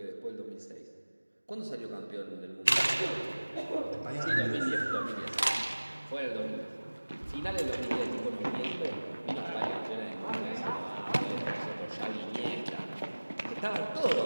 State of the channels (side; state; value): both; inverted; correlation -1.00